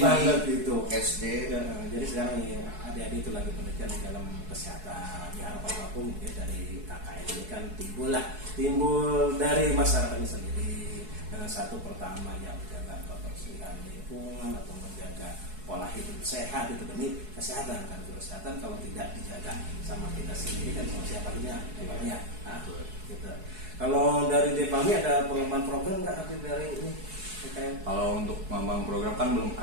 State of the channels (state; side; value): late; left; 4.7 ms